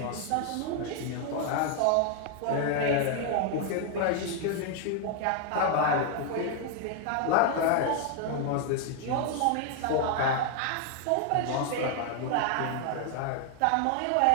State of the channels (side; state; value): both; different; correlation 0.00